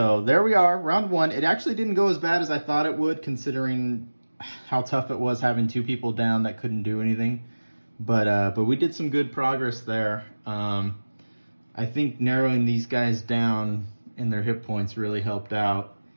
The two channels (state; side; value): inverted; both; correlation -1.00